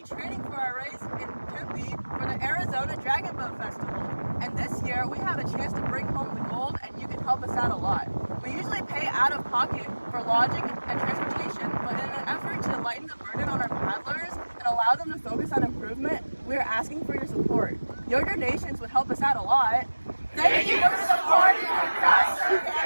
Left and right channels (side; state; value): both; inverted; correlation -1.00